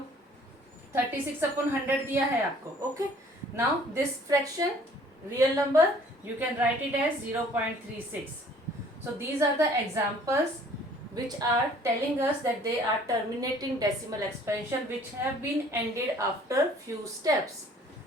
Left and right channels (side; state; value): both; normal; correlation 0.55